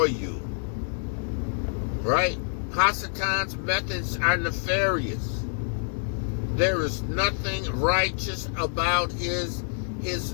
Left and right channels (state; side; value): silent; right; 60 dB below the other